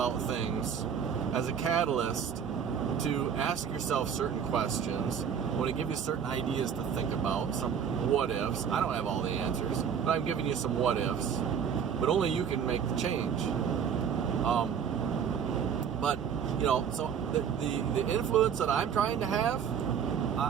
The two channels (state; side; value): quieter; left; 7.6 dB